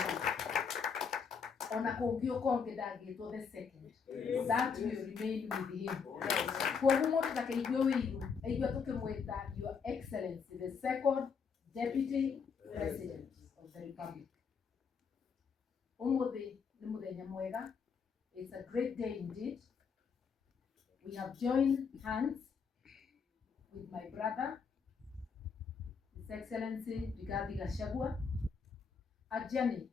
Onakongio Kongedagi to the second. That will remain with him. For whom that Your Excellency, the Second Deputy President of the Republic. It's a great day indeed. We have joined hands with my brother, His Excellency Rigathi Gachagua, a journey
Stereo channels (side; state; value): right; quieter; 5.9 dB